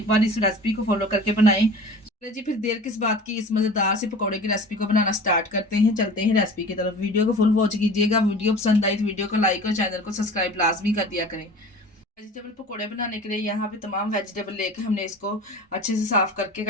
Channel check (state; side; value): normal; both; correlation 0.40